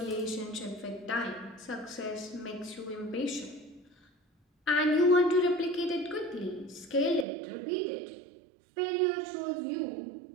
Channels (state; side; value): drops out; left; at 7.2 s